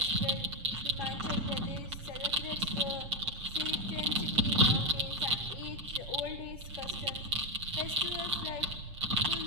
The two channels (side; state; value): left; late; 7.2 ms